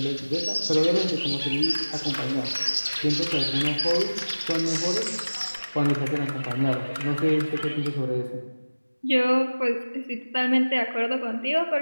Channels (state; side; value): inverted; both; correlation -1.00